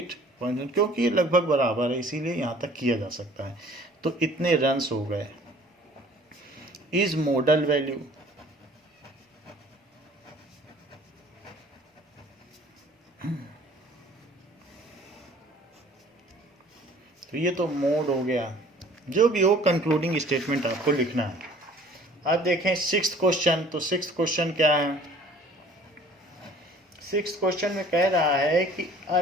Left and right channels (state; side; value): normal; both; correlation 0.51